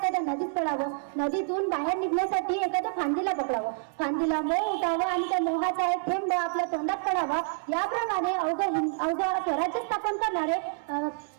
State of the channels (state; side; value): silent; left; 59 dB below the other